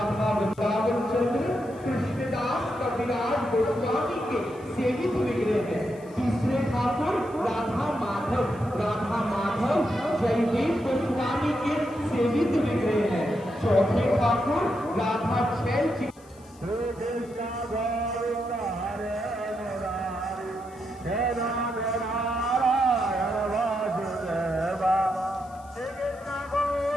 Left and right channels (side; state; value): left; noise; hiss, 27 dB below the sound